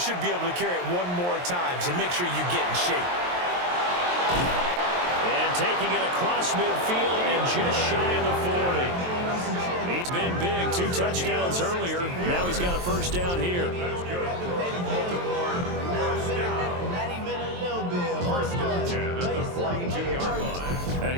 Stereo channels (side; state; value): left; late; 23 ms